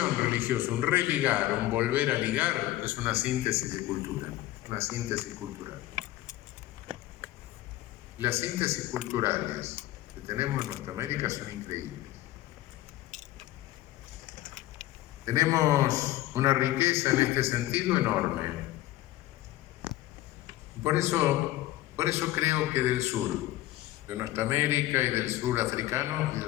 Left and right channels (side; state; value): right; quieter; 15.6 dB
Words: religiosa, un religar, un volver a ligar, es una síntesis de cultura, una síntesis cultural. Las síntesis culturales que tenemos en nuestra América son increíbles. Tenemos una riqueza en este sentido enorme. Por eso creo que del sur, de nuestra América y del sur africano y